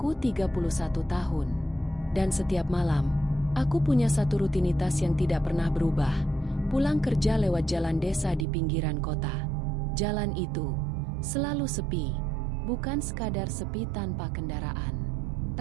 31 tahun, dan setiap malam, aku punya satu rutinitas yang tidak pernah berubah, pulang kerja lewat jalan desa di pinggiran kota. Jalan itu selalu sepi, bukan sekadar sepi tanpa kendaraan,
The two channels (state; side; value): drops out; left; at 8.5 s